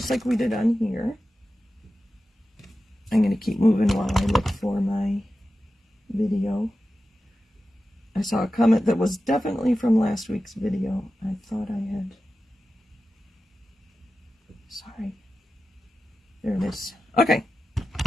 like we did on here. I'm going to keep moving while I look for my video. I saw a comment that was definitely from last week's video. I thought I had... Sorry. There it is. Okay.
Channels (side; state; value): both; normal; correlation 0.93